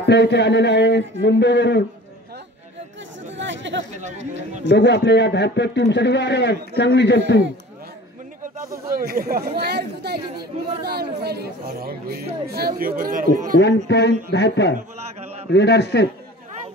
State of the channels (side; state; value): both; normal; correlation 0.43